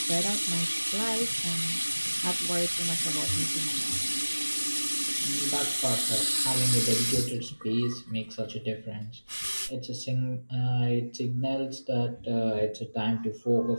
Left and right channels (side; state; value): both; inverted; correlation -1.00